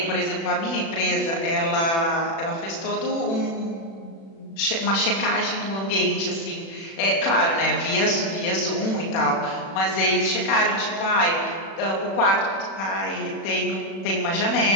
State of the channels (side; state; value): right; late; 36 ms